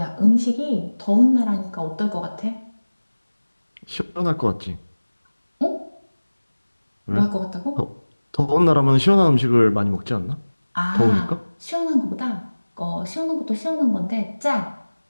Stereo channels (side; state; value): both; inverted; correlation -1.00